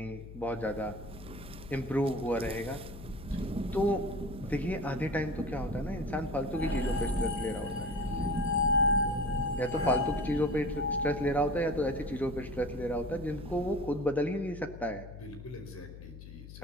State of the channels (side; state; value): left; noise; hum, 14 dB below the sound